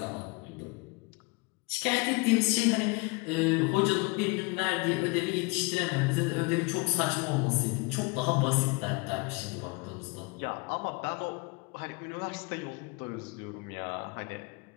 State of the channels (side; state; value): right; quieter; 27.7 dB